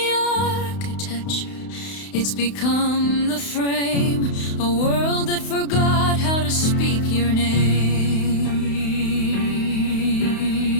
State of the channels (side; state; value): right; late; 32 ms